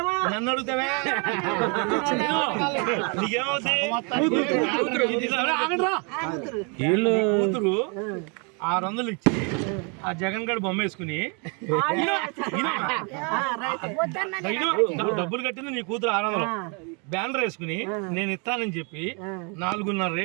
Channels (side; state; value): left; quieter; 34.9 dB